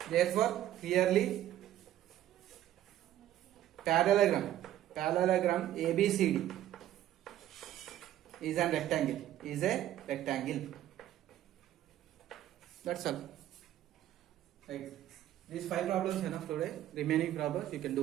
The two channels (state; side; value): quieter; left; 12.6 dB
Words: therefore clearly parallelogram ABCD is a rectangle. That's all. Right. These 5 problems enough today. Remaining problems you can